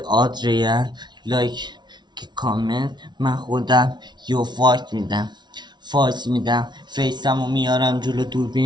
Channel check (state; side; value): late; left; 0.21 ms